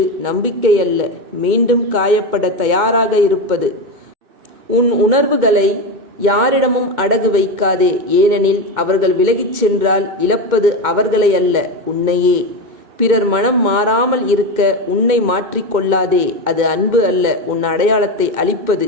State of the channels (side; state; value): left; late; 2.2 ms